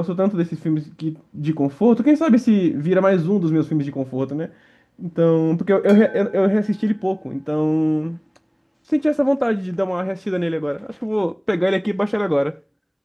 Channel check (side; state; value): both; identical; correlation 1.00